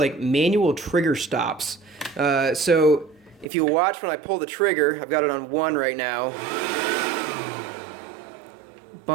manual trigger stops. So if you watch when I pull the trigger, I've got it on 1 right now.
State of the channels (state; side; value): drops out; left; at 3.5 s